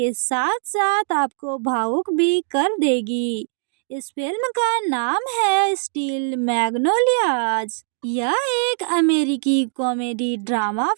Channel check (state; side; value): silent; left; digital silence